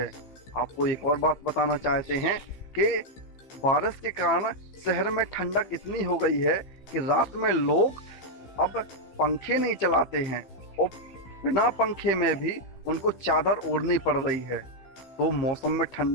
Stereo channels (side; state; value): right; late; 15 ms